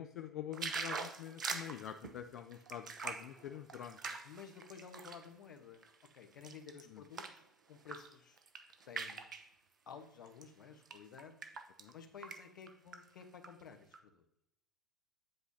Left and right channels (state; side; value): normal; both; correlation 0.46